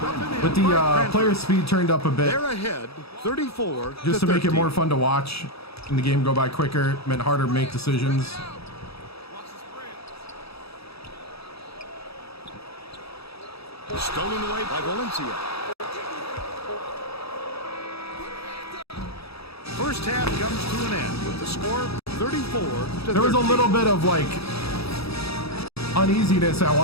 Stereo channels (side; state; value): right; late; 0.77 ms